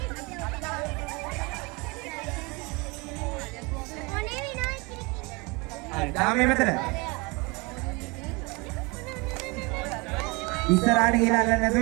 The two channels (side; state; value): left; quieter; 27.1 dB